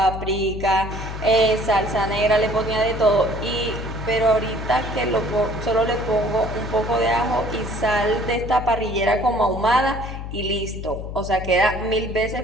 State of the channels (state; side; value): noise; left; hum, 8 dB below the sound